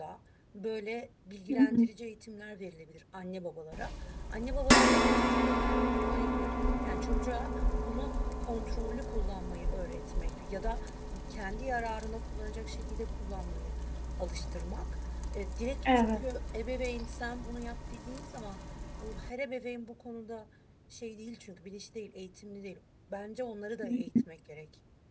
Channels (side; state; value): both; identical; correlation 1.00